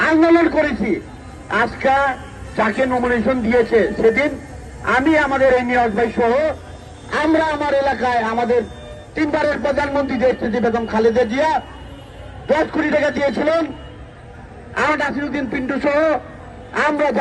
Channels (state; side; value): identical; both; correlation 1.00